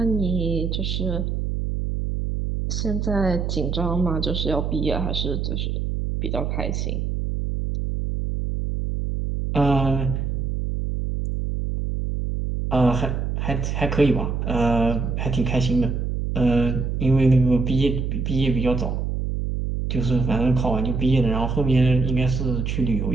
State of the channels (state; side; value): noise; right; hum, 1 dB below the sound